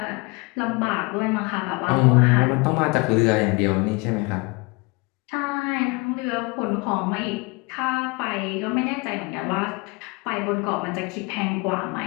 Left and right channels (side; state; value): right; quieter; 27.8 dB